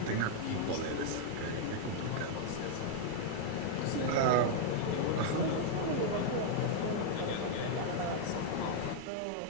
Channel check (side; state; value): both; different; correlation -0.01